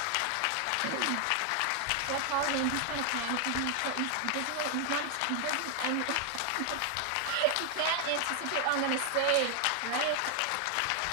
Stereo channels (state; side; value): different; both; correlation 0.00